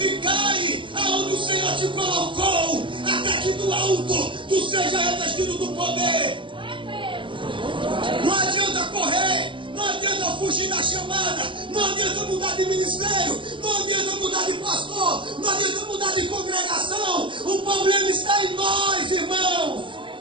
aonde o Senhor te colocou, até que do alto tu seja revestido do poder. Não adianta correr, não adianta fugir da chamada, não adianta mudar de ministério, não adianta mudar de pastor, não adianta mudar de congregação. O problema está em nós, irmãos.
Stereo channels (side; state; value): left; late; 0.24 ms